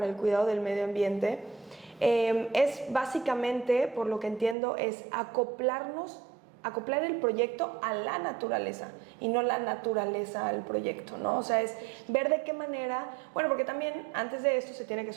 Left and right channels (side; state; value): left; drops out; at 4.5 s